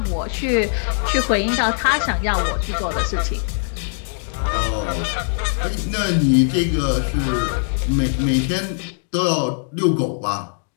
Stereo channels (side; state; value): right; silent; digital silence